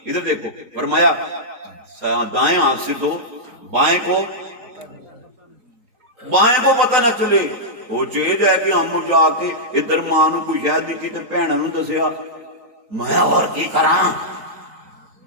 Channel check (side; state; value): left; late; 3.9 ms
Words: ادھر دیکھو، فرمایا دائیں ہاتھ سے دو، بائیں کو پتہ نہ چلے. وہ چیز ہے کہ ہم جا کے ادھر ماں نو کوئی شاید دیتی تے بھیناں نو دسیا، میں اور کی کراں؟